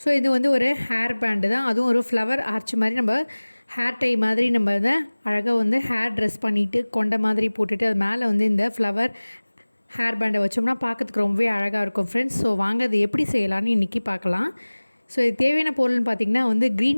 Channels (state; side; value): inverted; both; correlation -1.00